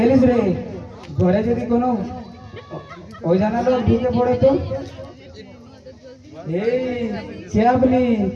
রে? ঘরে যদি কোনো ওই জানা লোক ঢুকে পড়ে তো? এই কে আপনি?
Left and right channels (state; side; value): identical; both; correlation 1.00